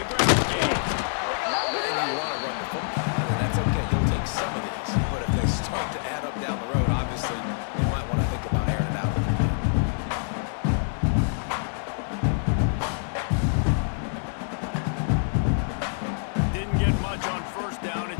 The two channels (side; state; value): right; silent; digital silence